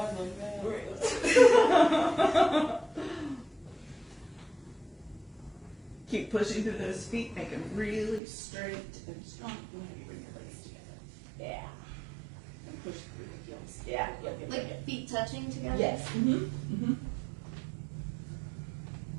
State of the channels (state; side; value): drops out; left; at 8.2 s